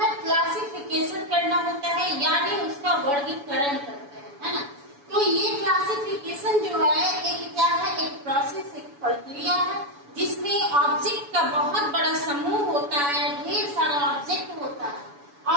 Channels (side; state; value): left; late; 7.0 ms